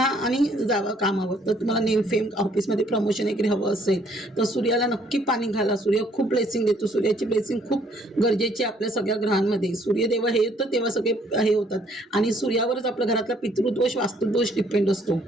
आणि जावा कामावर। तर तुम्हाला नेम फेम ऑफिसमध्ये प्रमोशन वगैरे हवं असेल तर सूर्याला नक्की पाणी घाला, सूर्य खूप ब्लेसिंग देतो, सूर्याची ब्लेसिंग खूप गरजेची आहे आपल्या सगळ्या ग्रहांमध्ये। सूर्यदेव हे येतं तेव्हा सगळे हे होतात, आणि सूर्यावरच आपल्या घरातला पितृदोष वास्तुदोष डिपेंड असतो।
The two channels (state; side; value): normal; both; correlation 0.64